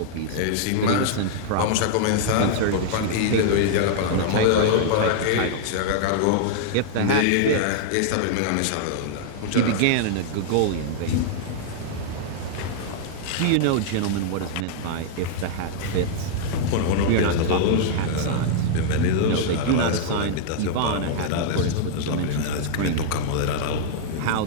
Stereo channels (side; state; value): both; different; correlation -0.01